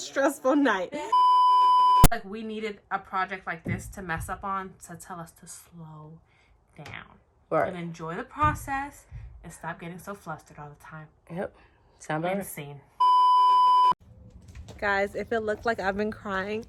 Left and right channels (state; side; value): identical; both; correlation 1.00